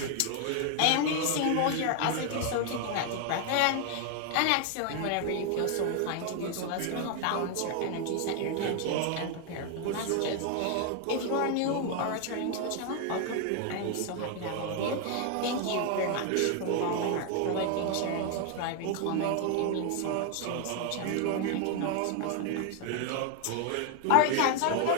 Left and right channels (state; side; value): different; both; correlation 0.00